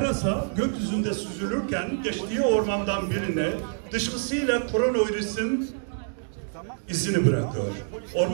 gökyüzünde süzülürken geçtiği ormandan birine dışkısıyla koronavirüsün izini bırakıyor.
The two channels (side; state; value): left; silent; digital silence